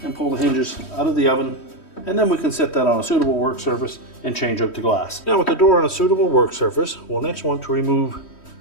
and pull the hinges out of the oven, and then we can set that on a suitable work surface and change out the glass. Now, with the door on a suitable work surface, we'll next want to remove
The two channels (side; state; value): right; late; 3.1 ms